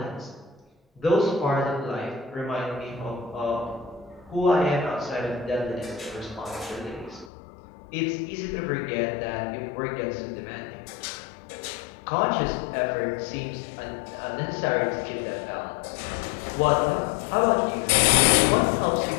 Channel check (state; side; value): drops out; right; at 7.3 s